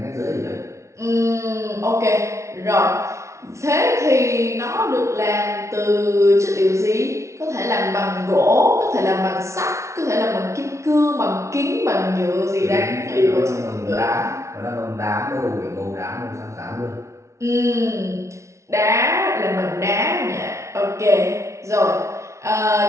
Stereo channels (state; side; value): late; left; 0.14 ms